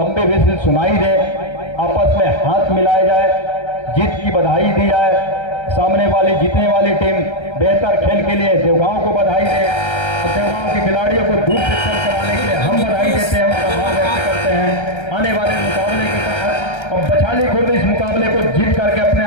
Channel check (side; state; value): right; late; 1.3 ms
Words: विजिल सुनाई दे, आपस में हाथ मिलाए जाए, जीत की बधाई दी जाए। सामने वाली जीतने वाली टीम बेहतर खेल के लिए देवगांव को बधाई दे, और देवगांव के खिलाड़ियों को दूर से चल कराने के लिए हम बधाई देते हैं, उनका आभार व्यक्त करते हैं। आने वाले मुकाबले के तहत और बछाली खुर्द इस मुकाबले को जीत करके अपने